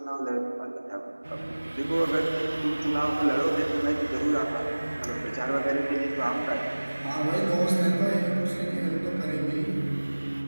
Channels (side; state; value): both; inverted; correlation -1.00